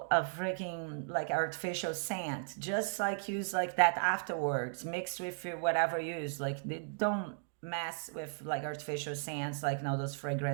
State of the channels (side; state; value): left; silent; digital silence